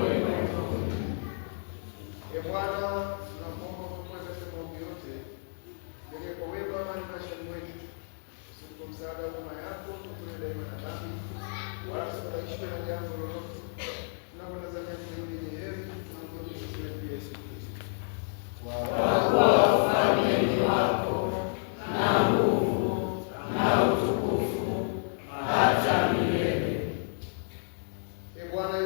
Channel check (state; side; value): silent; right; 55 dB below the other